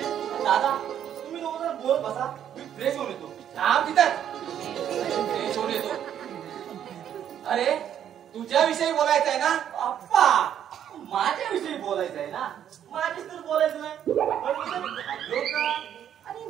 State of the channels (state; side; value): quieter; left; 9.8 dB